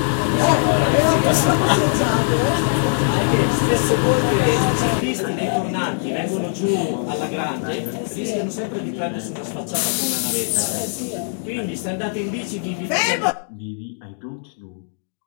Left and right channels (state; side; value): silent; right; 65 dB below the other